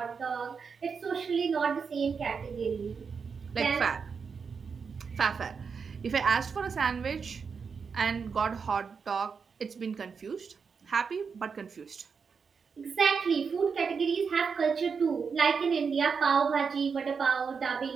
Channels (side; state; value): left; quieter; 5.7 dB